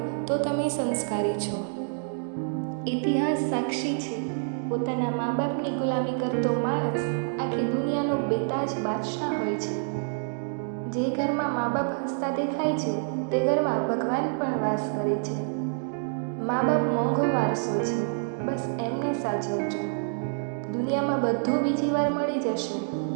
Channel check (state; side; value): silent; left; digital silence